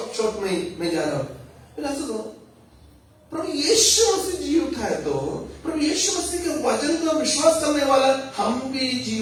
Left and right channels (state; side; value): identical; both; correlation 1.00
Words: में मैं जा रहा हूं। प्रभु यीशु मसीह जी उठा है तो प्रभु यीशु मसीह के वचन का विश्वास करने वाला हम भी जी